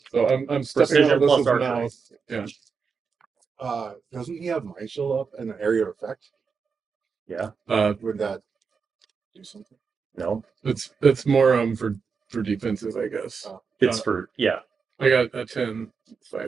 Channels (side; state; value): left; quieter; 5.5 dB